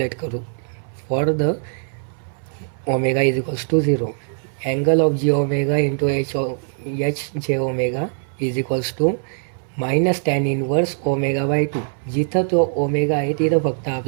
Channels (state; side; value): silent; left; 64 dB below the other